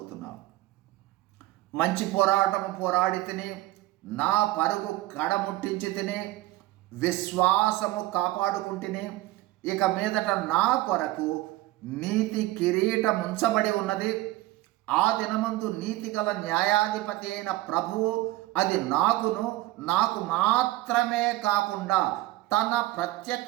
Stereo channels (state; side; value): quieter; left; 17.5 dB